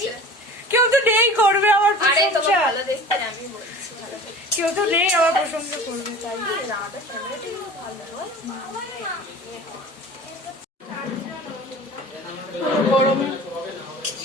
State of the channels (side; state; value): both; normal; correlation 0.40